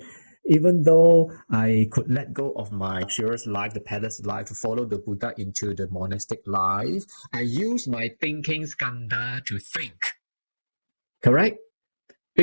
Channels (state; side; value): inverted; both; correlation -1.00